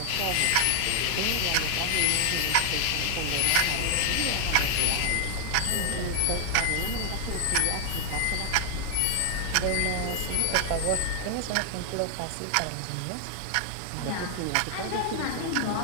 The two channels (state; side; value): different; both; correlation 0.00